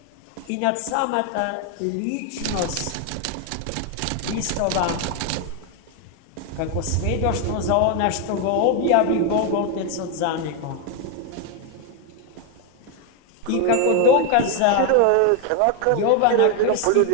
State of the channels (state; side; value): different; both; correlation 0.01